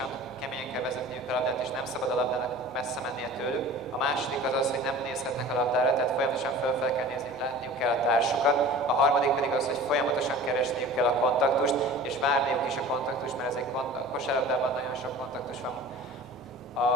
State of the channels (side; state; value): both; normal; correlation 0.41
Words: keményen kell vezetniük a labdát, és nem szabad a labdának messze mennie tőlük. A második az az, hogy nem nézhetnek a labdára, tehát folyamatosan fölfele kell nézni, látniuk kell a társukat. A harmadik pedig az, hogy folyamatosan keresniük kell a kontaktust, és várniuk is a kontaktust, mert ezek a kosárlabdában nagyon sok kontaktus van.